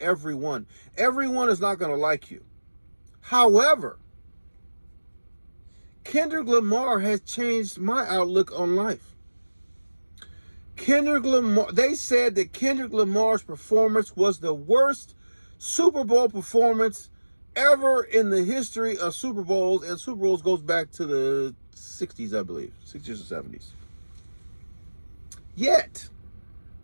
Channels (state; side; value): inverted; both; correlation -1.00